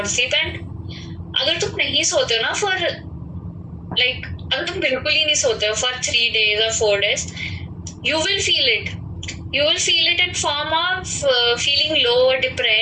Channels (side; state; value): both; identical; correlation 1.00